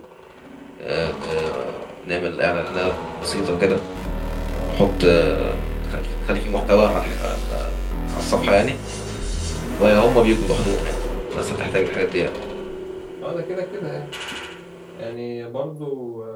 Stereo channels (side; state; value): both; identical; correlation 1.00